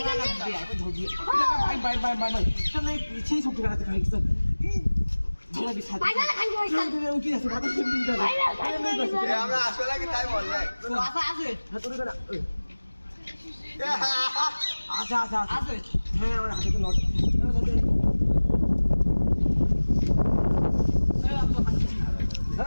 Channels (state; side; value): inverted; both; correlation -1.00